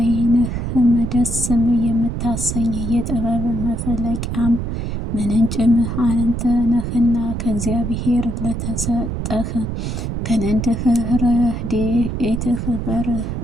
ደስም የምታሰኝ የጥበብ መፍለቂያም ምንጭም አንተ ነህና ከእግዚአብሔር ለተሰጠህ ከነንድህ ረድኤትህ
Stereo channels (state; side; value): noise; right; rumble, 3 dB below the sound